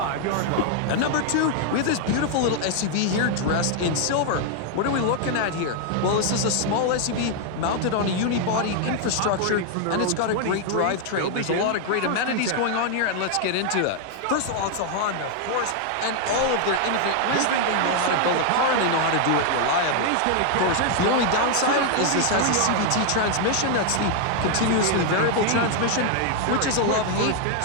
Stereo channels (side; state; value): both; different; correlation 0.00